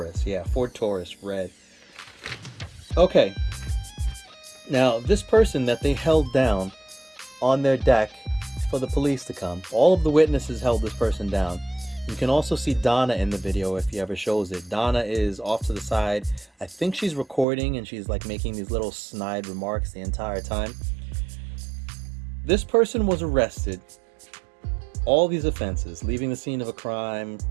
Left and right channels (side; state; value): left; drops out; at 17.4 s